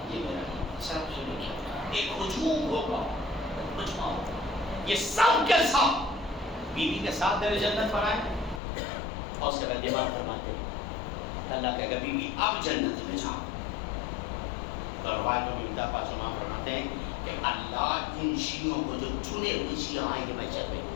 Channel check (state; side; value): drops out; right; at 8.6 s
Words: یہ میرا, سب سے ایک ہجوم ہوگا, مجمع ہوگا, یہ سب کے سب بیوی کے ساتھ در جنت پر آئے اور اس کے بعد دماغ فرماتے ہیں اللہ کہے گا بیوی اب جنت میں جاؤ. تو روایت میں ملتا پاس امام فرماتے ہیں کہ اللہ ان شیعوں کو جو چنے ہوئے شیعہ آئیں گے محشر میں.